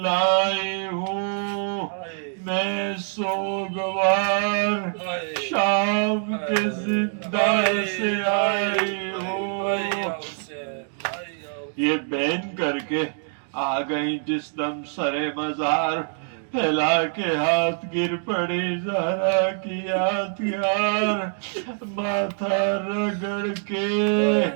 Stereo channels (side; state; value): left; silent; 62 dB below the other